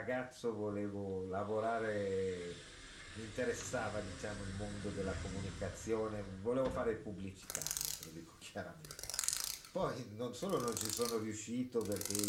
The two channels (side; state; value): both; identical; correlation 1.00